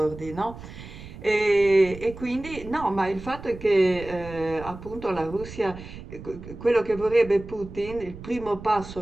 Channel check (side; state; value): right; noise; rumble, 14 dB below the sound